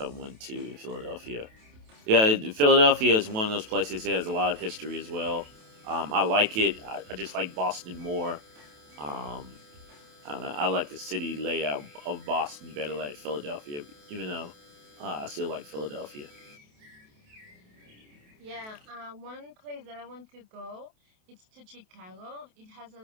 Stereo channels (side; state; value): left; late; 28 ms